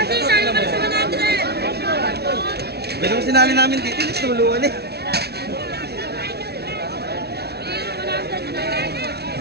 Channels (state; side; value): late; left; 0.48 ms